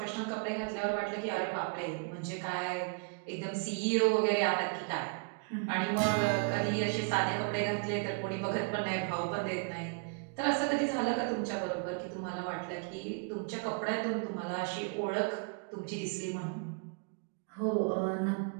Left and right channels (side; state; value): left; quieter; 37.4 dB